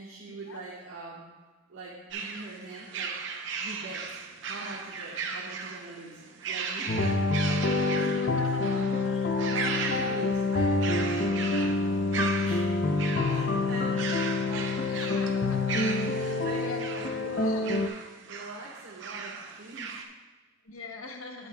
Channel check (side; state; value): both; normal; correlation 0.42